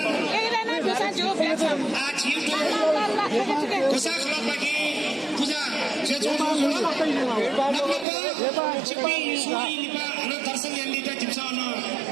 आज छिटो कोसा खलबागी पूजा जे जुल छिपी सुई लिपा अनि दर्शन यान्दिता जिम्सन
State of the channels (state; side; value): drops out; left; at 8.1 s